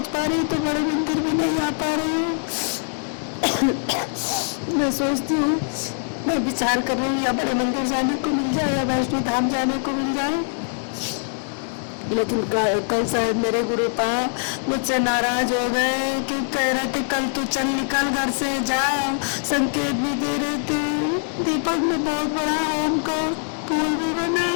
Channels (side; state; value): right; silent; digital silence